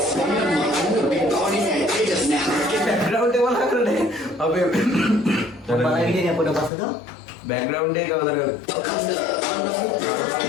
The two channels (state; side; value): drops out; right; at 6.7 s